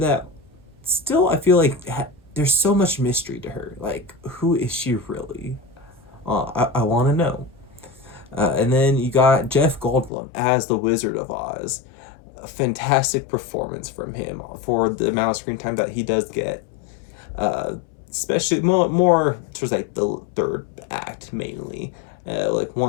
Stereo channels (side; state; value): right; drops out; at 10.1 s